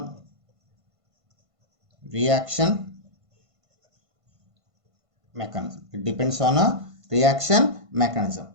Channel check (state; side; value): late; left; 1.5 ms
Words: reaction mechanism. It depends on a reaction mechanism.